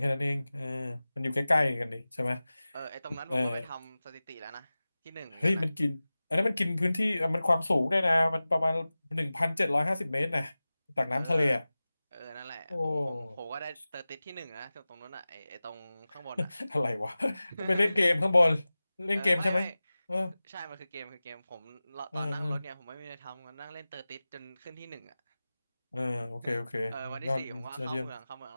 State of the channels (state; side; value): inverted; both; correlation -0.97